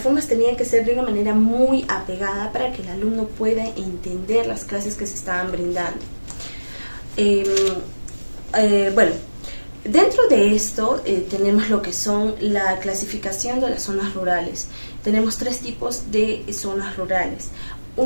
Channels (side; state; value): both; inverted; correlation -1.00